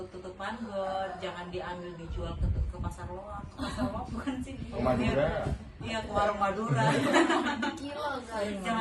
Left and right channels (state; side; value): identical; both; correlation 1.00